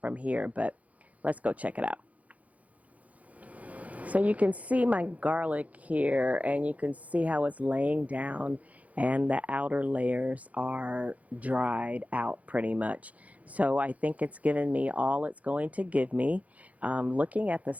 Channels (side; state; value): left; late; 0.070 ms